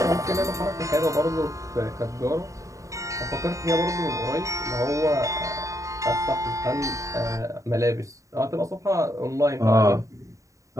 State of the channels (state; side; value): late; left; 0.16 ms